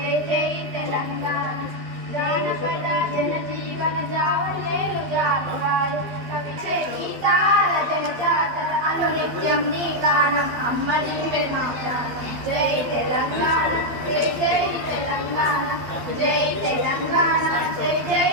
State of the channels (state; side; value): late; left; 12 ms